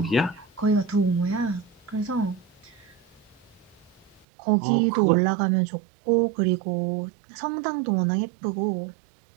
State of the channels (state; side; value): drops out; left; at 4.2 s